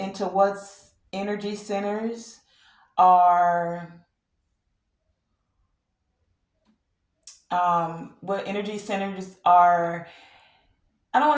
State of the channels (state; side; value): identical; both; correlation 1.00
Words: what's energy centers are, what energy centers are. I don't